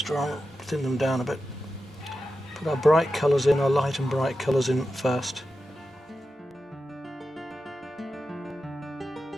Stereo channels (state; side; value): normal; both; correlation 0.91